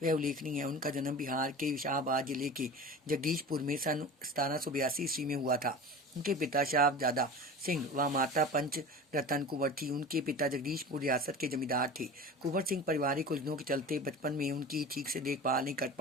वह उल्लेखनीय है। उनका जन्म बिहार के शाहबाद जिले के जगदीशपुर में सन 1782 ईस्वी में हुआ था। उनके पिता शाहजादा सिंह व माता पंच रतन कुंवर थी। उनके पिता जगदीशपुर रियासत के जमींदार थे। कुंवर सिंह पारिवारिक उलझनों के चलते बचपन में उनकी ठीक से देखभाल नहीं कर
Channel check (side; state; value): both; normal; correlation 0.34